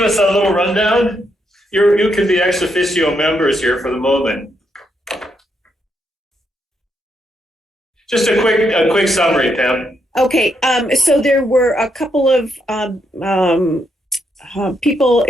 us a little rundown? You can be ex officio members here for the moment. Just a quick summary, Pam. Okay, so there were a couple of people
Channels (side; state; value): both; normal; correlation 0.78